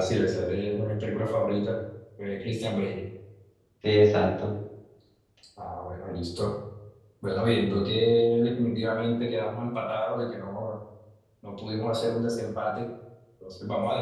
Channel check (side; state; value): both; identical; correlation 1.00